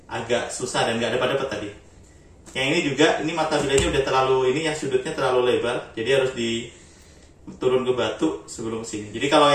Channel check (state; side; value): identical; both; correlation 1.00